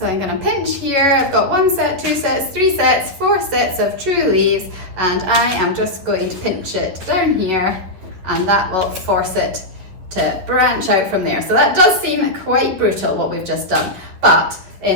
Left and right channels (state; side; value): late; left; 11 ms